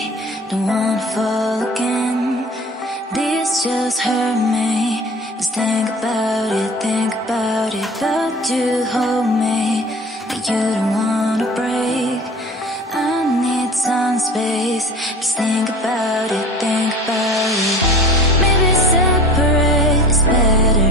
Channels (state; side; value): normal; both; correlation 0.41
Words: don't wanna fall again. This just hurt me. Just think about it. But you hold me, but you don't wanna break. I need some space, just think about it.